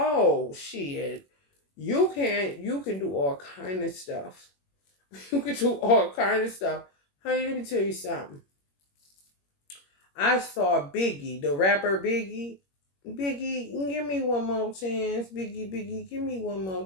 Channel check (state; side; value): late; right; 21 ms